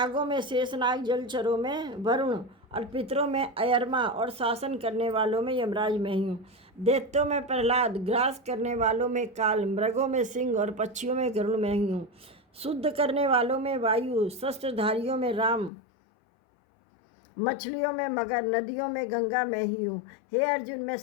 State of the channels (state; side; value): drops out; right; at 15.7 s